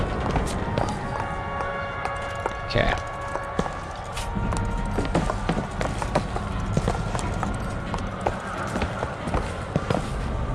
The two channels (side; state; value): both; identical; correlation 1.00